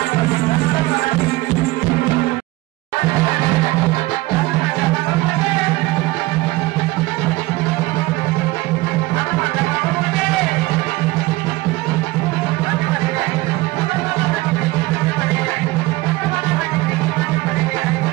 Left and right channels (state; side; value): quieter; left; 19.9 dB